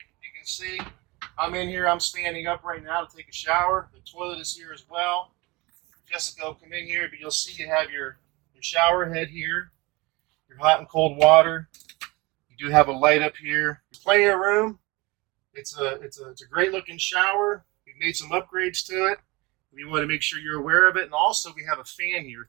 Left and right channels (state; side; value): quieter; left; 23.9 dB